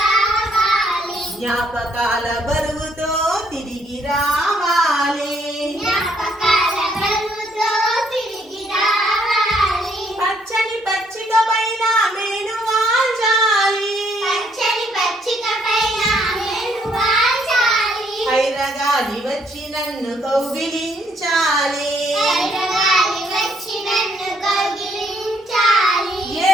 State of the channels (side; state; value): both; normal; correlation 0.69